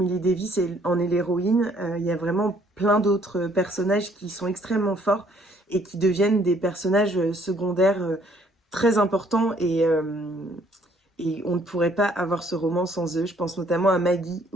Davis en est l'héroïne, il y a vraiment plein d'autres personnages qui sont extrêmement forts et qui deviennent des personnages secondaires très importants et on ne pourrait pas avoir ce roman sans eux. Je pense notamment à Maggie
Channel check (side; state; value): both; normal; correlation 0.63